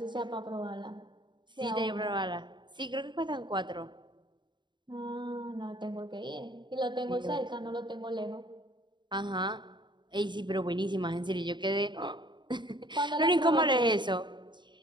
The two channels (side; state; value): left; late; 0.22 ms